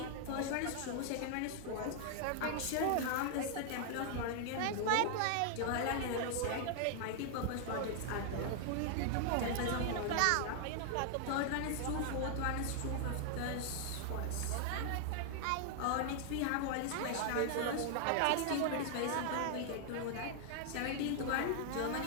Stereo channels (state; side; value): different; both; correlation 0.00